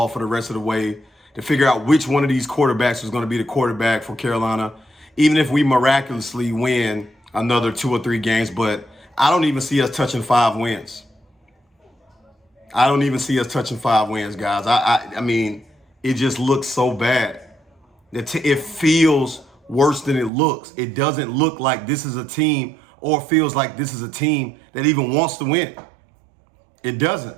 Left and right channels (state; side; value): drops out; left; at 20.3 s